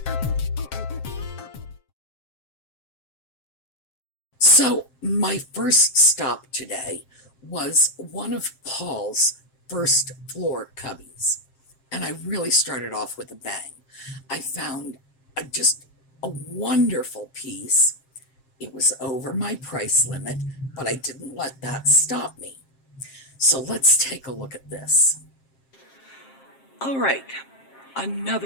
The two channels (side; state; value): right; late; 7.5 ms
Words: So, my first stop today was one of Paul's first floor cubbies. And I really started off with a bang. I found just a wonderful piece. It was over my price limit, but I didn't let that stop me. So let's take a look at this. All right,